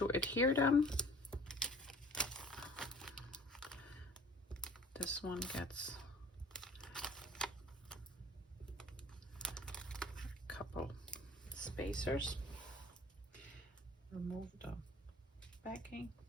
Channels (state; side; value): normal; both; correlation 0.49